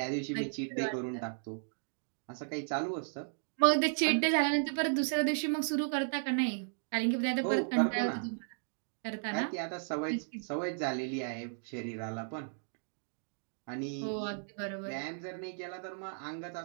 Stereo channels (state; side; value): silent; left; digital silence